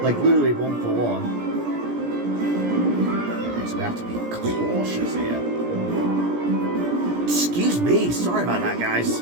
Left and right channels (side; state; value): left; late; 17 ms